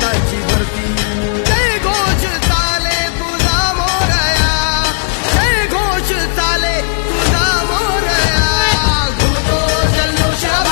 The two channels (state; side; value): silent; right; digital silence